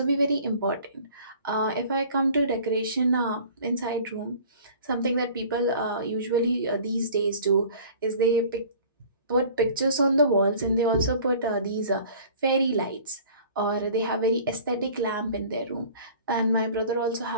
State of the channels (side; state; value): both; inverted; correlation -0.47